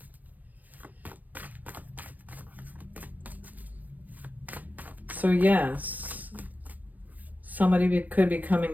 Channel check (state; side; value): late; left; 0.083 ms